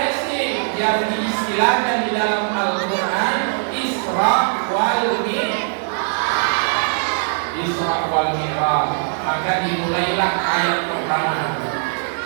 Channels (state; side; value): silent; left; digital silence